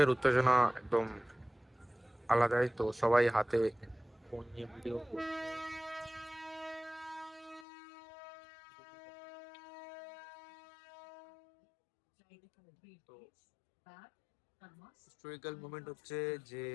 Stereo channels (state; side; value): drops out; right; at 7.7 s